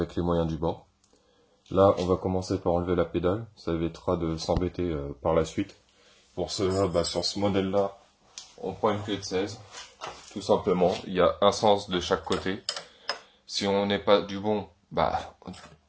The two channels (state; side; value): identical; both; correlation 1.00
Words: les moyens du bord. Là, on va commencer par enlever la pédale. Ça évitera de s'embêter par la suite. Pour cela, sur ce modèle-là, on prend une clé de 16. Tout simplement, il y a un sens de chaque côté. Si on n'est pas du bon,